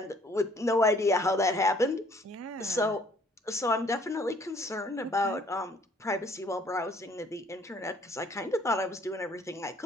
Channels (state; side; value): normal; both; correlation 0.59